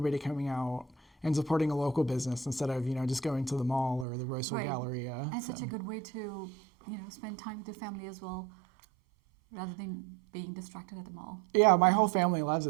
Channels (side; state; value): left; drops out; at 4.0 s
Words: coming out and supporting a local business instead of just going to the mall or the Roseville Right. Galleria. And So- such a good way to, spend time with your family as well, rather than being distracted at the mall. Yeah, my whole family loves